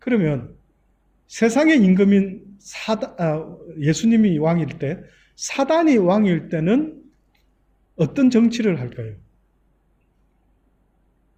세상의 임금인 예수님이 왕일 때, 사단이 왕일 때는 어떤 정치를 할까요?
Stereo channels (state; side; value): identical; both; correlation 1.00